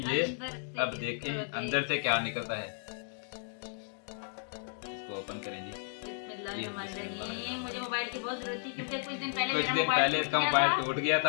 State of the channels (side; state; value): right; silent; digital silence